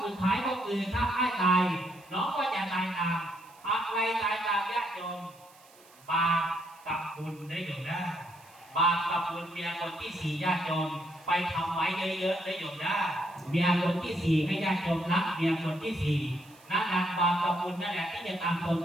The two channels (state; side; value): noise; right; hiss, 26 dB below the sound